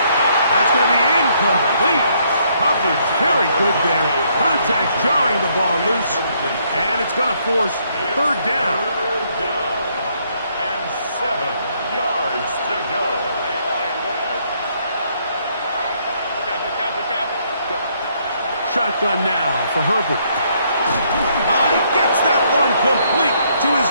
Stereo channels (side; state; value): both; inverted; correlation -0.70